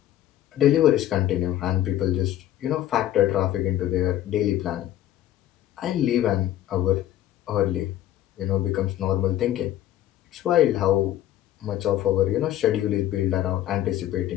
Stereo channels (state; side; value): quieter; right; 12.7 dB